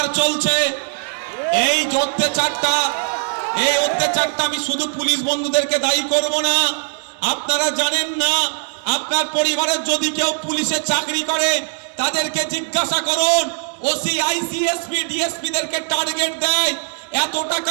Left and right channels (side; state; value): left; silent; 61 dB below the other